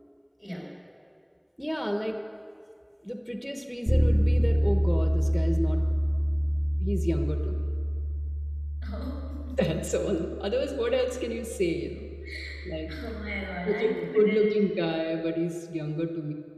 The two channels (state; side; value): identical; both; correlation 1.00